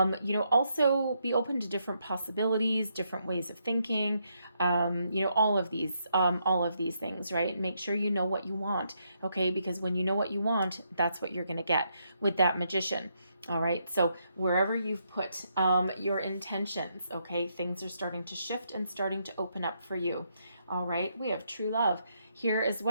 be open to different possibilities, different ways of thinking, all of these things, right? Make sure you know what you want. Okay. Because when you know what you want, that's what you're going to get with that Magician. All right. So wherever you've put your intentions, okay, things are starting to shift and starting to open up for you. All right, we have true love here as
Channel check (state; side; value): inverted; both; correlation -0.77